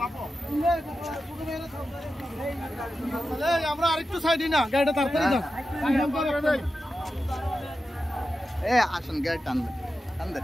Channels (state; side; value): normal; both; correlation 0.91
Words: আমরা আরেকটু সাইডে না গাড়িটা তাড়াতাড়ি দাও আসেন গাড়ি টানবেন